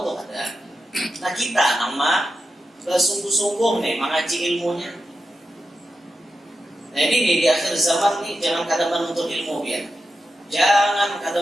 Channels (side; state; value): both; normal; correlation 0.90